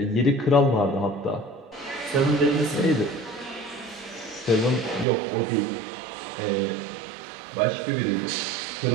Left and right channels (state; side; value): drops out; left; at 5.1 s